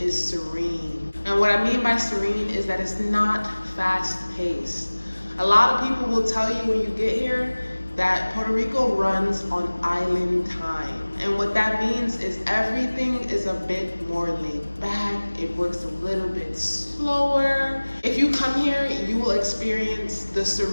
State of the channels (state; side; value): inverted; both; correlation -1.00